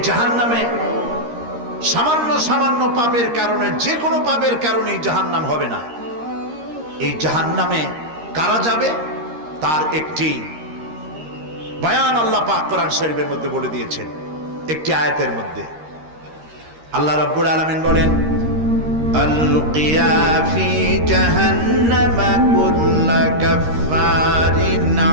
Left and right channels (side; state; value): left; late; 13 ms